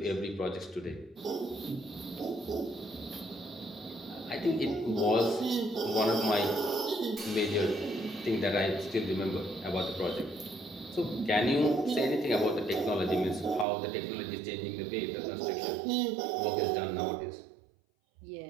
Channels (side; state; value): left; drops out; at 13.7 s